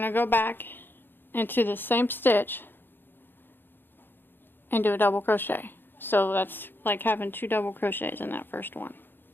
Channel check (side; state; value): right; late; 0.098 ms